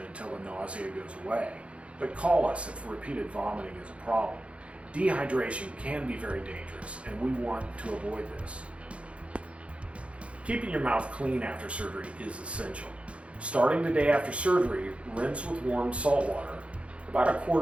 until the nausea goes away, but call us if repeated vomiting is a problem. Dehydration can be very dangerous and we want to avoid this. Keeping your mouth clean after surgery is essential. Starting the day after surgery, rinse with warm salt water, about a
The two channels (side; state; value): left; late; 0.061 ms